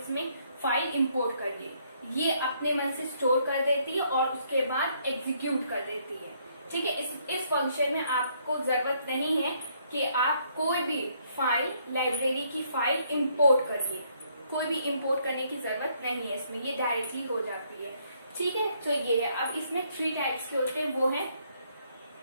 फाइल इम्पोर्ट करिए, ये अपने मन से स्टोर कर देती है और उसके बाद एग्जीक्यूट कर देती है, ठीक है। इस फंक्शन में आपको जरूरत नहीं है कि आप कोई भी फाइल लाइब्रेरी की फाइल इम्पोर्ट करिए, कोई भी इम्पोर्ट करने की जरूरत नहीं है इसमें, ये डायरेक्टली हो जाती है, ठीक है। तो ये है। अब इसमें 3 टाइप्स के होते हैं, वो है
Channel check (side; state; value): both; inverted; correlation -0.69